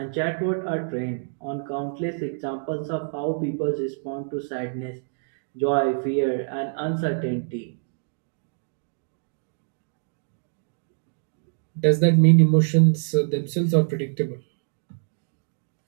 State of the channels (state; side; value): silent; left; digital silence